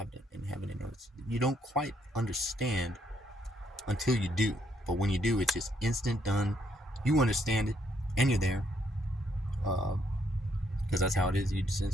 and earth. You don't quite understand until you do, but when you do, it's just instant done. You understand it, and you're there, because that's how it is. You just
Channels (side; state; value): both; normal; correlation 0.72